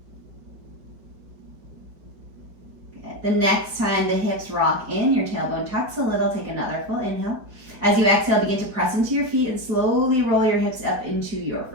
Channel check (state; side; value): late; left; 4.8 ms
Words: Good, the next time the hips rock in, your tailbone tucks a little, take another full inhale. As you exhale, begin to press into your feet and slowly roll your hips up into your